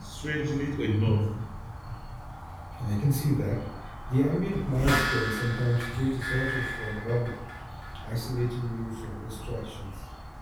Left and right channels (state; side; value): identical; both; correlation 1.00